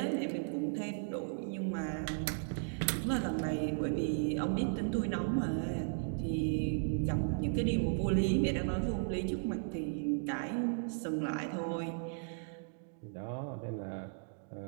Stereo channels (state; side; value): silent; left; digital silence